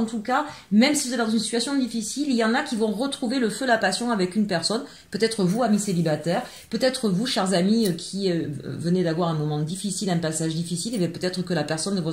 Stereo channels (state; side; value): identical; both; correlation 1.00